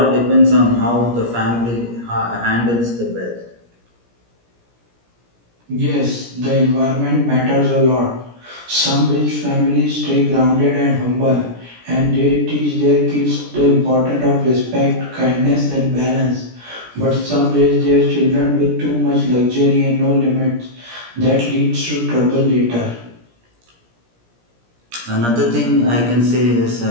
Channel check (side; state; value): left; late; 17 ms